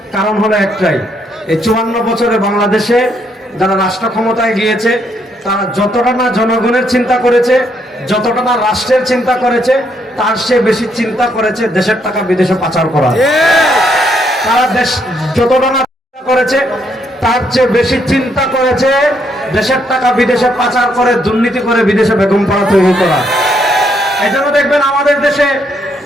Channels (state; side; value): normal; both; correlation 0.73